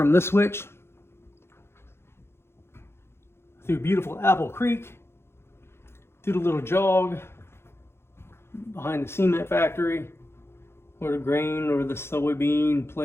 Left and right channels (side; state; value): right; late; 0.12 ms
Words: this switch through beautiful Apple Creek, through the little jog behind the cement factory, or the grain or the soybean